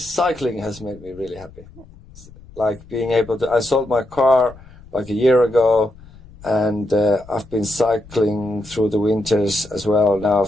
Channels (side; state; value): left; noise; rumble, 22 dB below the sound